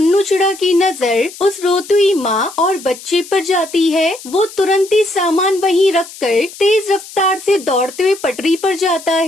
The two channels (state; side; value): noise; left; hiss, 16 dB below the sound